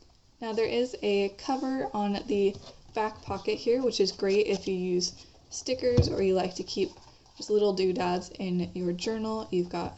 Now there is a cover on the back pocket here, which is great if you use stickers or you like to keep just little doodads in your journal. You've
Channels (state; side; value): identical; both; correlation 1.00